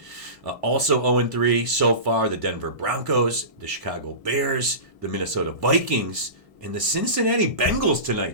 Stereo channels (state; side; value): late; left; 1.5 ms